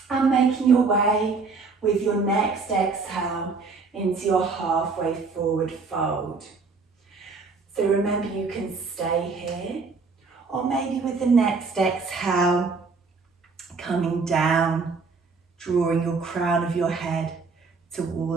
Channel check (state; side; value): quieter; left; 4.4 dB